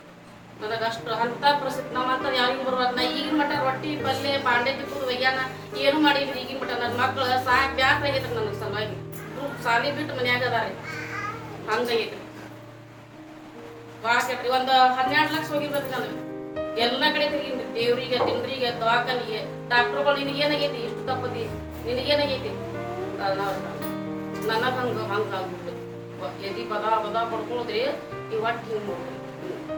ನನಗೆ ಅಷ್ಟು ಅಂತ ಪರಿಸ್ಥಿತಿ ನಾವಂತ ಯಾರಿಗೂ ಬರ್ಬಾರ್ದು. ನಾ ಈಗಿನ ಮಟ್ಟ ರೊಟ್ಟಿ ಪಲ್ಯ ಬಾಂಡೆ ತಿಕ್ಕುದು ಒಯ್ಯಾನ ಏನು ಮಾಡಿದ್ರಿ. ಈಗಿನ ಮಟ್ಟ ನನ್ನ ಮಕ್ಳು ಸಾಕು ಬ್ಯಾಸ್ರ ಆಗೈತ್ರಿ ನನಗೆ ಸಲುವಾಗಿ. ಸಾಲಿ ಬಿಟ್ಟು ಮನ್ಯಾಗ ಅದಾರಿ, ಹಂಗಾಗೈತ್ರಿ. ಭಾಳ ಕೆಟ್ರಿ. ಒಂದು 12 ಲಕ್ಷ ಹೋಗಿರ್ಬೇಕು ನನಗೆ. ಎಲ್ಲ ಕಡೆ ತಿರುಗಿನ್ರಿ, ದೇವ್ರಿಗೆ ತಿಂದ್ರಿಗೆ ದವಾಖಾನಿಗೆ ಡಾಕ್ಟರ್ಗಳು ನಿನಗೇನಾಗೈತಿ, ಇಷ್ಟು ತಪ್ಪದಿ ನಿನಗೇನಾಗೈತಿ. ನನಗೆ ಹಂಗಾಗ್ಬಿಟ್ಟು ಎದಿ ಬದ ಬದ ಪಡ್ಕೊಳ್ಳೋದ್ರಿ. ಈ ಹೊಟ್ಟೆ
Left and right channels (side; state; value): both; identical; correlation 1.00